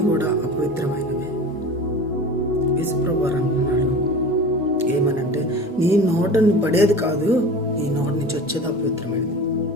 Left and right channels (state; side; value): normal; both; correlation 0.35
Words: కూడా అపవిత్రమైనవి. యేసుప్రభువారు అంటున్నాడు ఏమనంటే, నీ నోటని పడేది కాదు, నీ నోటి నుంచి వచ్చేది అపవిత్రమైనది.